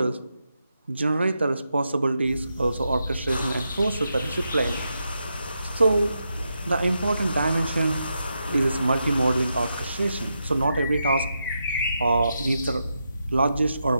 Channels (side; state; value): both; inverted; correlation -0.85